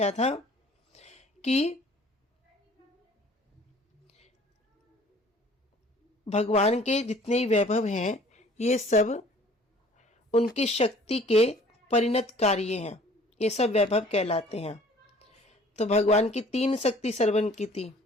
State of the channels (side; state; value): both; normal; correlation 0.52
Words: था कि भगवान के जितने ही वैभव हैं ये सब उनकी शक्ति के परिणत कार्य हैं, ये सब वैभव कहलाते हैं। तो भगवान की 3 शक्ति श्रवण की थी।